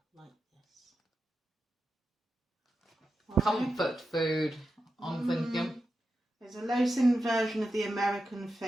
like this. Comfort food, I'm thinking. There's a low-sin version of the American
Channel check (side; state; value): both; normal; correlation 0.89